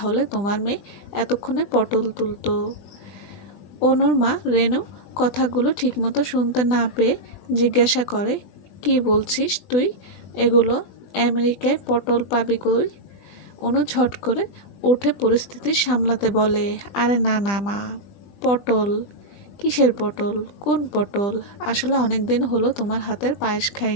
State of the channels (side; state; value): right; late; 20 ms